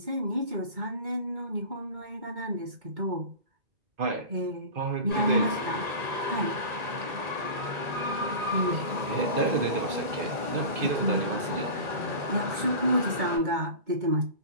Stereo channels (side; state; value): left; late; 2.2 ms